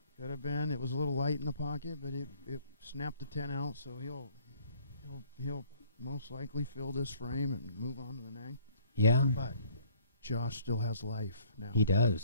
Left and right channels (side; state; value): both; inverted; correlation -0.59